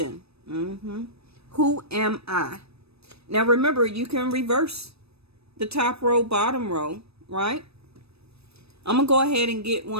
Who am I? Now remember, you can reverse the top row, bottom row, right? I'm going to go ahead and get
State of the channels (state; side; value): late; left; 0.78 ms